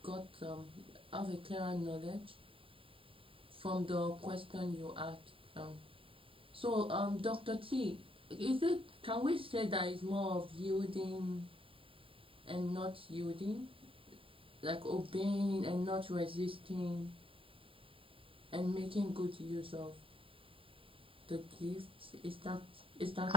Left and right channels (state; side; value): late; left; 0.26 ms